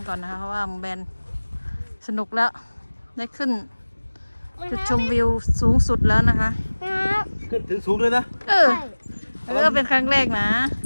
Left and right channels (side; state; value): both; inverted; correlation -1.00